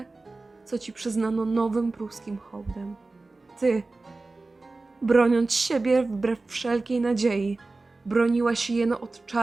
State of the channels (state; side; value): quieter; left; 3.4 dB